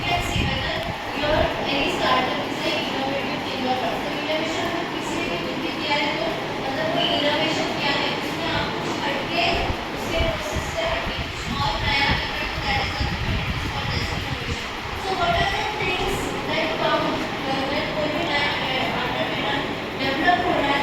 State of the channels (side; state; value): both; identical; correlation 1.00